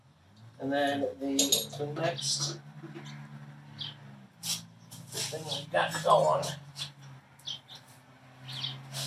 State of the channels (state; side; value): identical; both; correlation 1.00